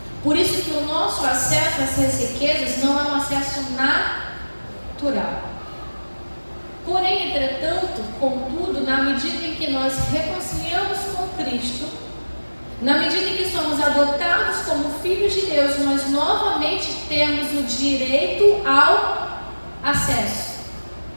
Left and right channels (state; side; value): inverted; both; correlation -1.00